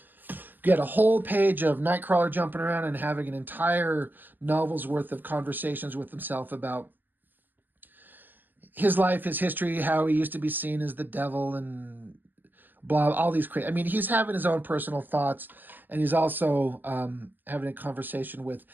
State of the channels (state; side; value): late; left; 0.090 ms